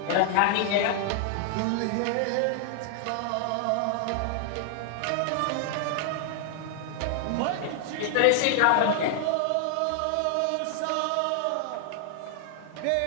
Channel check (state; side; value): different; both; correlation 0.00